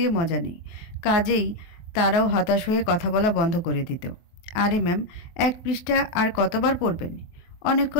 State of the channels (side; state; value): right; late; 23 ms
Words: মজা নেই। কাজেই তারাও হতাশ হয়ে কথা বলা বন্ধ করে দিত। আরে ম্যাম, এক পৃষ্ঠা আর কতবার পড়বেন?